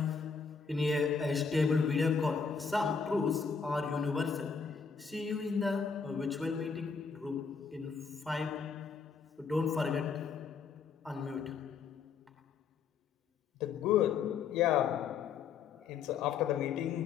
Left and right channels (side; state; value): right; quieter; 5.7 dB